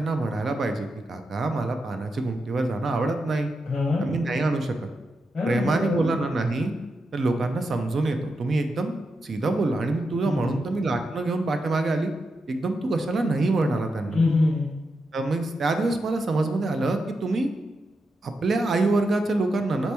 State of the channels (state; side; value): normal; both; correlation 0.86